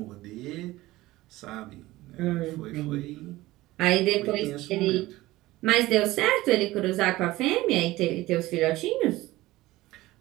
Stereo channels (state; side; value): quieter; left; 18.0 dB